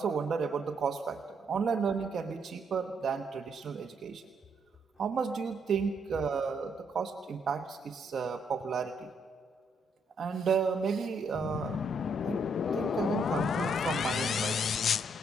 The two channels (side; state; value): both; normal; correlation 0.73